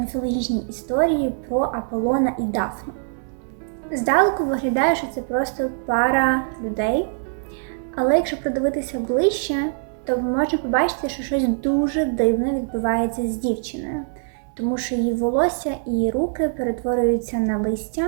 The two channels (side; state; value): left; silent; digital silence